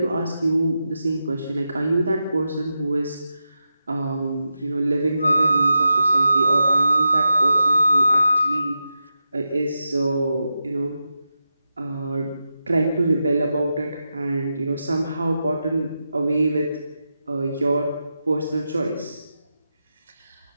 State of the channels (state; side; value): inverted; both; correlation -0.89